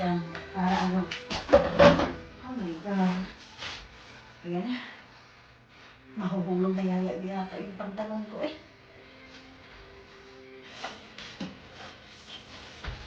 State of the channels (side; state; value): both; identical; correlation 1.00